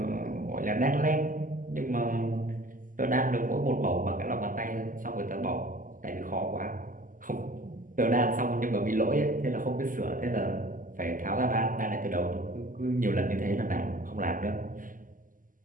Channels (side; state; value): left; late; 0.39 ms